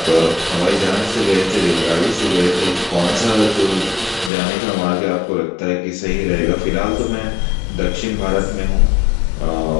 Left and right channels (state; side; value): drops out; right; at 4.3 s